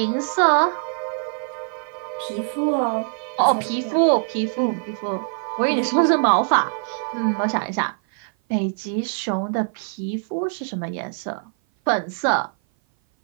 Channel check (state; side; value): silent; left; 56 dB below the other